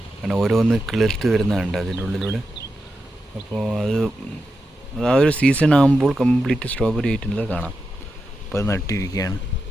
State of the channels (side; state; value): both; normal; correlation 0.89